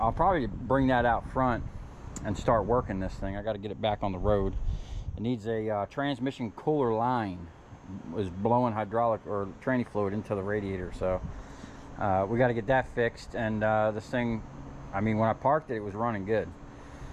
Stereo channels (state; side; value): identical; both; correlation 1.00